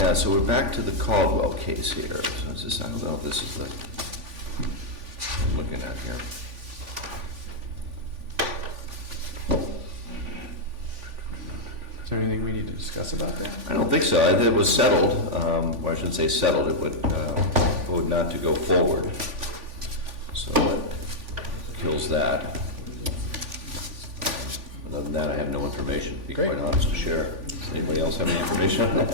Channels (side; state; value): left; late; 3.5 ms